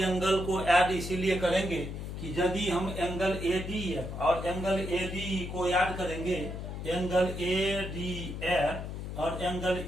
को ऐड इसीलिए करेंगे कि यदि हम एंगल ADF और एंगल ADE को ऐड करेंगे, एंगल ADF और एंगल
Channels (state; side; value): noise; left; hum, 7 dB below the sound